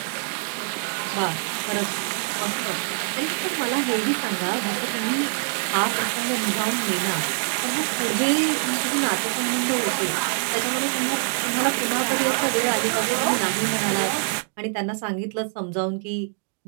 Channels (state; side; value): silent; left; digital silence